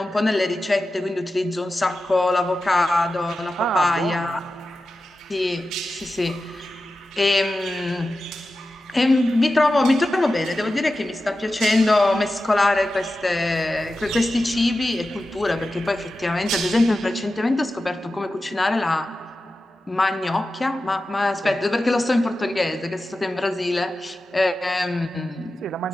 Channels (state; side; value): normal; both; correlation 0.93